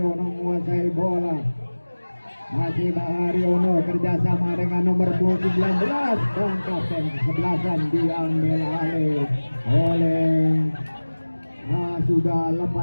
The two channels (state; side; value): inverted; both; correlation -1.00